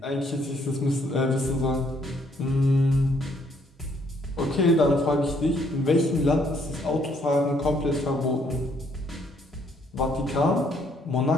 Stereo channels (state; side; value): normal; both; correlation 0.68